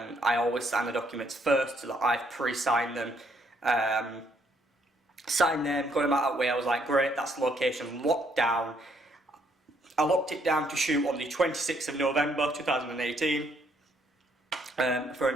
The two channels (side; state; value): both; normal; correlation 0.70